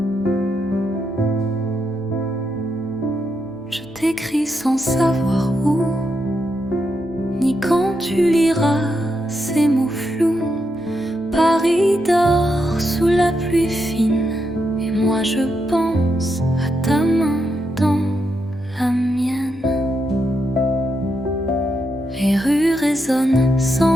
Je t'écris sans savoir où, ni quand tu liras ces mots flous. Paris dort sous la pluie fine, et moi je pense à ta main résonne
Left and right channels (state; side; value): noise; left; hum, 27 dB below the sound